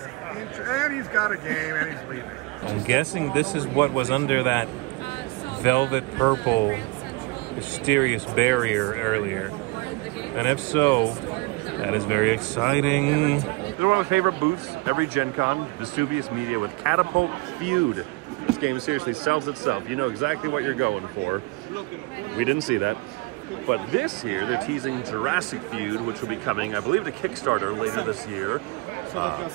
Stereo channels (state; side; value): quieter; left; 25.7 dB